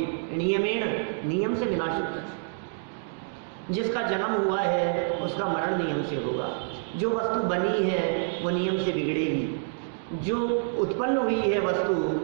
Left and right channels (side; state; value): left; silent; digital silence